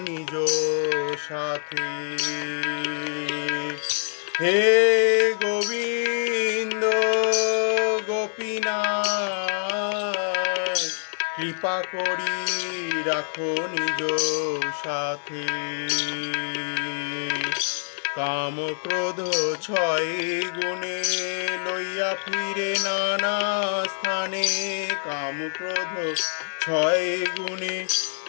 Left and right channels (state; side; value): silent; right; digital silence